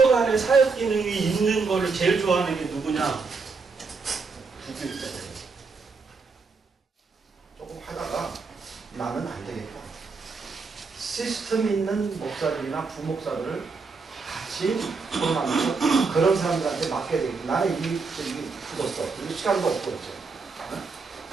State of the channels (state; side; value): quieter; left; 4.6 dB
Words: 안에 사역 기능이 있는 거를 제일 좋아하는 게 누구냐? 부교육자들. 조금 하다가 나는 안 되겠다. 시스템 있는 목사들이나 부목사들을 같이 form하면서 그런 사람들한테 맡겨야 되겠다. 나는 이게 굳었어. 그리고 시간도 없고 있죠.